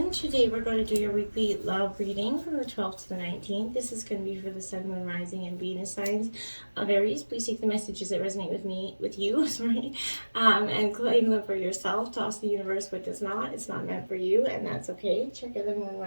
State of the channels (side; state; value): both; inverted; correlation -1.00